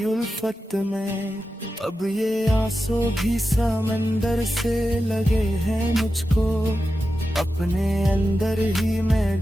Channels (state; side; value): normal; both; correlation 0.91